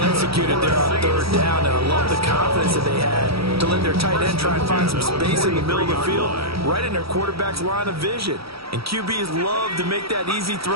executed there on 3rd down. And I love the confidence that they had to let their tight end try and find some space in the middle of the field, right in their quarterback's line of vision. And QBs love to make that easy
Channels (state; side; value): late; left; 0.76 ms